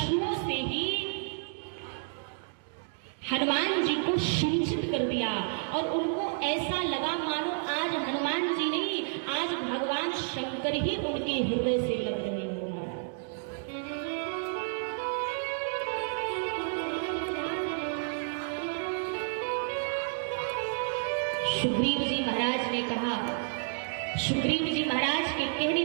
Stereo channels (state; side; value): silent; left; digital silence